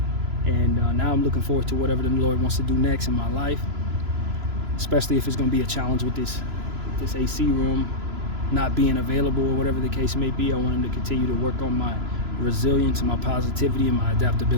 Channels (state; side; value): late; left; 3.0 ms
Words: And now I'm looking forward to whatever the Lord wants to do next in my life. Especially if it's going to be a challenge with this AC room not being available or whatever the case may be. I want Him to continue to work on my resilience and my positivity and my